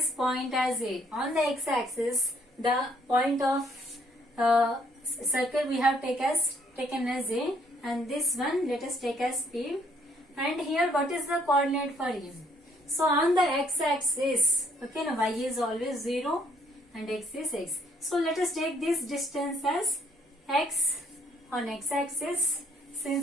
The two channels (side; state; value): both; normal; correlation 0.65